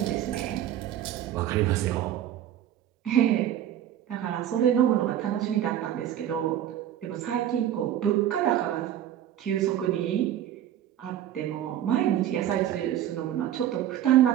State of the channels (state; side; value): quieter; left; 11.3 dB